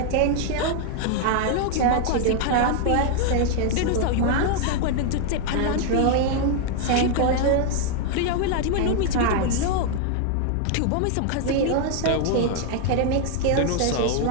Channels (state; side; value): different; both; correlation 0.00